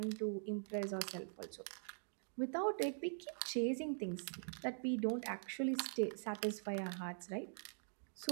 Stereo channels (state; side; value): silent; left; digital silence